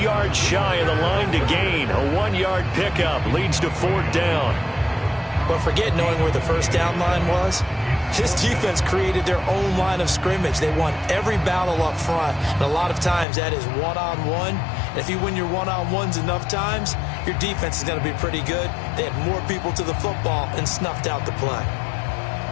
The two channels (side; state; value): right; drops out; at 13.2 s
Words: yards shy of the line to gain. A 1-yard pickup leads to 4th down. But forget knowing where the first down line was. This defense created their own line of scrimmage. They won every battle up front, and a lot of times that is one-on-one. And if you win your one-on-ones enough times, your defense is going to be pretty good. They had more people to the football and snuffed out the play.